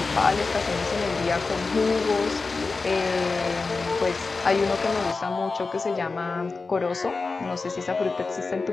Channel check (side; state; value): right; quieter; 4.0 dB